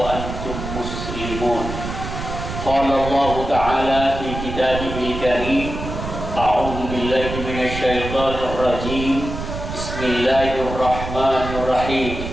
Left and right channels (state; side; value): noise; right; rumble, 7 dB below the sound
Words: مسلمون. قال الله تعالى في كتابه الكريم: أعوذ بالله من الشيطان الرجيم. بسم الله الرحمن الرحيم.